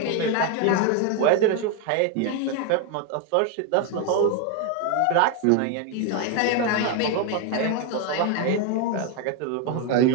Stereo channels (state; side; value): different; both; correlation 0.01